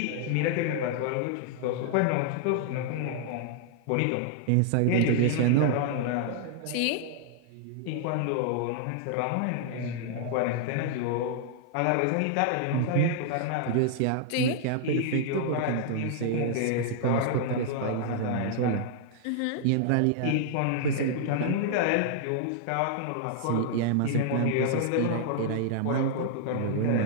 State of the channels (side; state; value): both; different; correlation -0.01